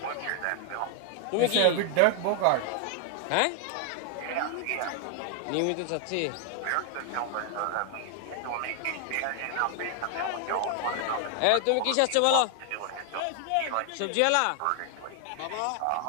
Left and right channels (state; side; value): different; both; correlation 0.00